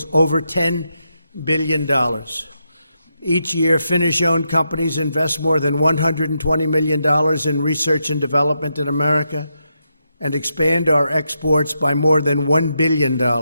over $10 billion. Each year, Finnish-owned companies invest more than $120 million in research and development in America and expand our exports by more than $1 billion.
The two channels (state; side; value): inverted; both; correlation -0.83